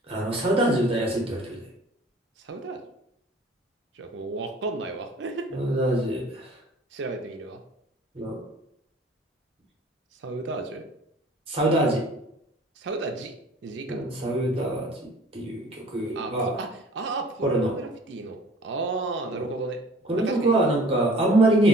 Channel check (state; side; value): normal; both; correlation 0.50